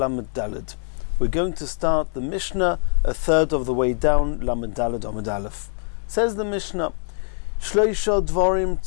Daled. We're going to start the Mishnah a third of the way down, Lamed Daled Amud Aleph. Says the Mishnah, Shloisha dvarim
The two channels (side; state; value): right; silent; digital silence